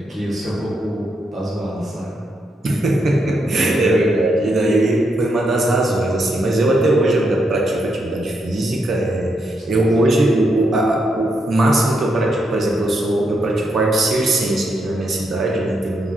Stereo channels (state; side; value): normal; both; correlation 0.80